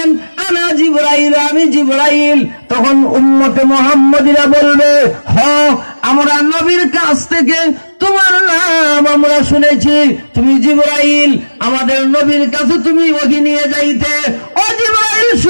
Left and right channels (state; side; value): inverted; both; correlation -1.00